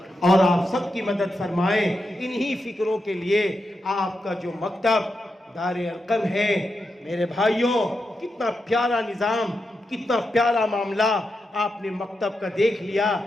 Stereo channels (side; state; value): both; normal; correlation 0.87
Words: اور آپ سب کی مدد فرمائے۔ انہی فکروں کے لیے آپ کا جو مکتب دار ارقم ہے، میرے بھائیوں کتنا پیارا نظام، کتنا پیارا معاملہ آپ نے مکتب کا دیکھ لیا۔